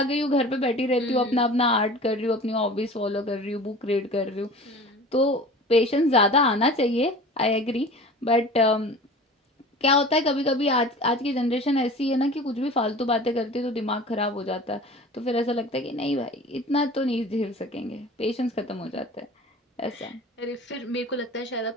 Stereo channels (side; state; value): both; normal; correlation 0.39